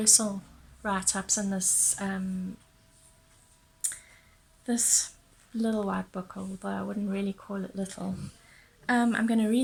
write-ups in this little white book, although I wouldn't really call it little. I'm going to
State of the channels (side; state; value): both; identical; correlation 1.00